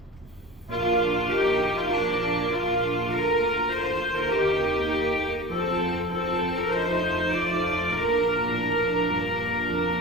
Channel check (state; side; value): normal; both; correlation 0.36